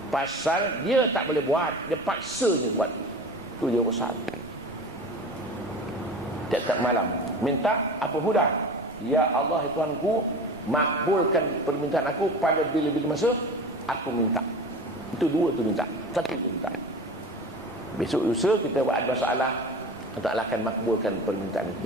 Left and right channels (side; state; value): right; noise; rumble, 24 dB below the sound